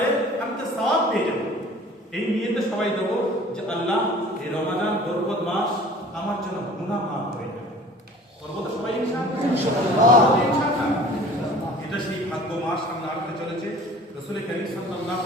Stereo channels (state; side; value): normal; both; correlation 0.47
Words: আমি তো সওয়াব পেয়ে যাবো। এই নিয়েতে সবাই দেবো যে আল্লাহ এই রমাদান বরকত মাস আমার জন্য গুনাহ মাফ করে দেবে। করবো তো সবাই ইনশাআল্লাহ। এটা সেই ভাগ্য মাস সামনে আসতে চলেছে। রাসূল কারীম সাল্লাল্লাহু